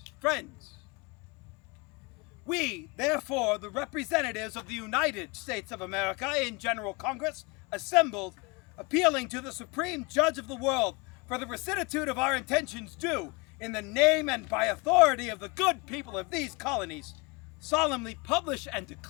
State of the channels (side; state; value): right; quieter; 27.3 dB